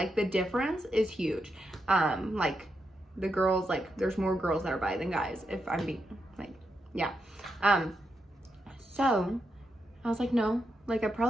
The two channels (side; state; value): both; normal; correlation 0.84